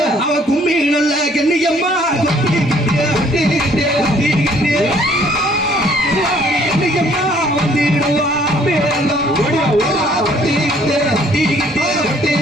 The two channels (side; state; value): both; normal; correlation 0.60